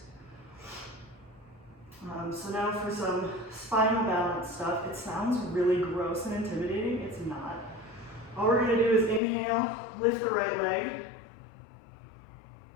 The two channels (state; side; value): drops out; right; at 9.2 s